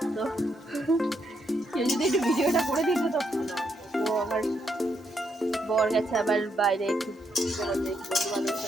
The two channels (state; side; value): normal; both; correlation 0.78